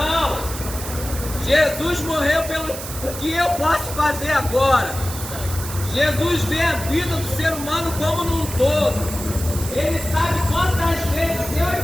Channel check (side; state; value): right; noise; hiss, 9 dB below the sound